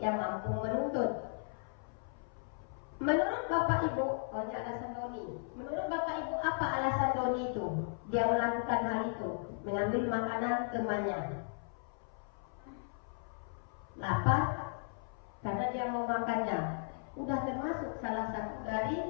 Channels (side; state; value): right; silent; 54 dB below the other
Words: mampu menuntut. Menurut Bapak Ibu, ini alasan Doni. Menurut Bapak Ibu, apa alasan Doni itu? Dia melakukan hal itu, mengambil makanan temannya. Lapar karena dia mau makannya. sudah termasuk salah satu